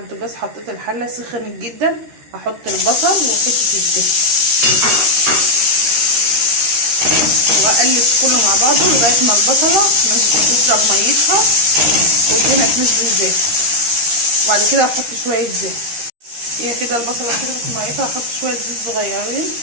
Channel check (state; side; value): late; left; 13 ms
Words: البوتاجاز، حطيت الحله سخنت جدا، هحط البصل وحته الدهن واقلب كله مع بعضه لغايه ما البصله تشرب ميتها والدهنه تنزل زيت. وبعد كده هحط شويه زيت. هي كده البصله شربت ميتها، هحط شويه زيت صغيرين